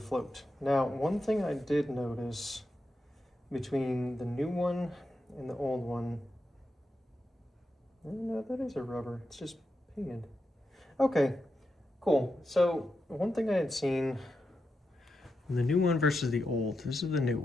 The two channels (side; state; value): both; normal; correlation 0.87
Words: float. Now, one thing I did notice between the new one and the old one, no, that is a rubber, it's just painted. Okay, cool. So one thing I had seen, the new one versus the old, this is the new